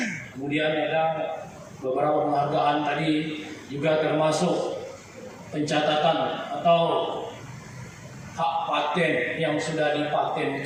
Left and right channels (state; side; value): identical; both; correlation 1.00